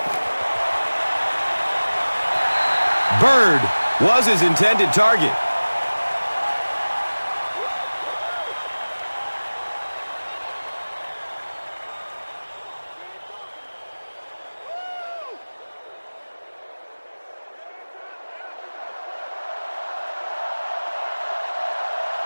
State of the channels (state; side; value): inverted; both; correlation -1.00